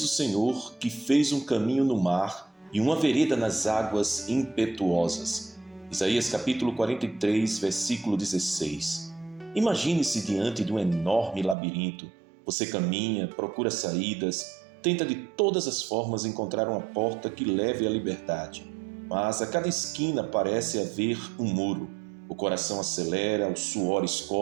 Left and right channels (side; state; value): left; drops out; at 11.6 s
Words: o Senhor, que fez um caminho no mar e uma vereda nas águas impetuosas. Isaías capítulo 43, versículo 16. Imagine-se diante de um enorme labirinto. Você caminha, procura saídas, tenta de todas as formas encontrar uma porta que leve à liberdade. Mas a cada esquina parece haver um muro. O coração acelera, o suor